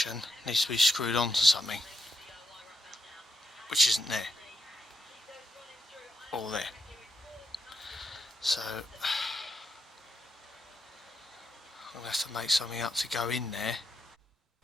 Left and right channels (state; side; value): normal; both; correlation 0.82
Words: needs to be screwed onto something, which isn't there, or there. So I'm going to have to make something up to go in there.